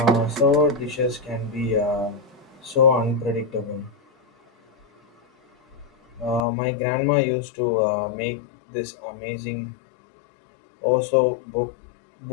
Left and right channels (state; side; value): drops out; right; at 6.4 s